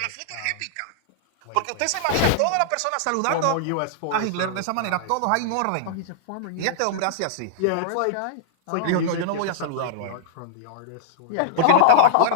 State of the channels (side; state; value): both; different; correlation -0.01